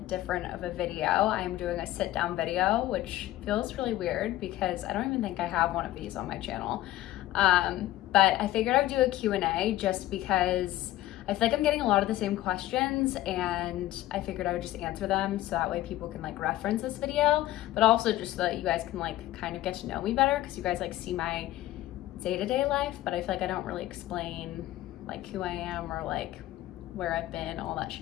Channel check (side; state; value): right; quieter; 15.2 dB